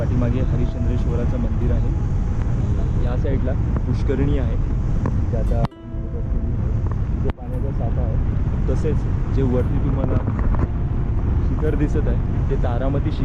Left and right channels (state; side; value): identical; both; correlation 1.00